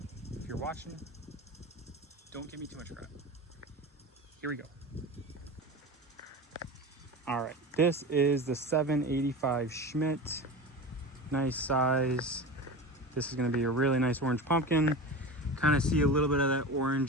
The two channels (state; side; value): normal; both; correlation 0.29